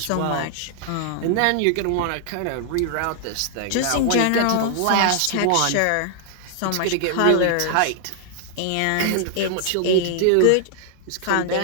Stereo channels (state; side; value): different; both; correlation 0.00